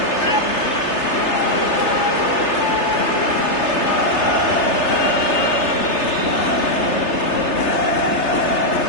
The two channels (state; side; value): late; right; 3.3 ms